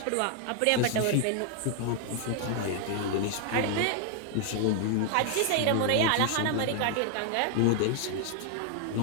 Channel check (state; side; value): different; both; correlation 0.00